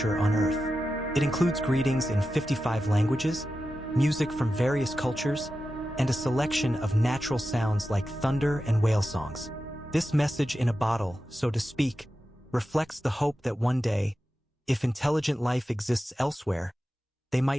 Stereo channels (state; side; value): normal; both; correlation 0.92